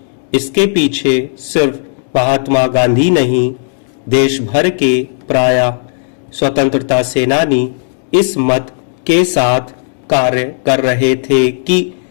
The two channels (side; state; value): right; silent; digital silence